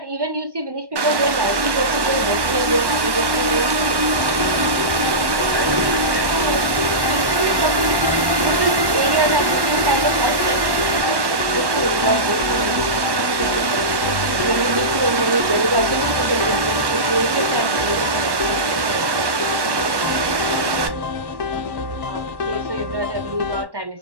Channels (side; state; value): left; late; 1.1 ms